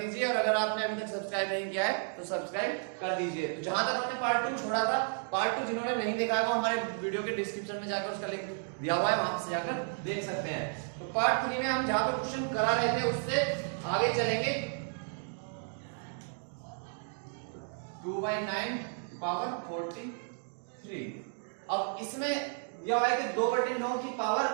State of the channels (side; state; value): left; silent; 56 dB below the other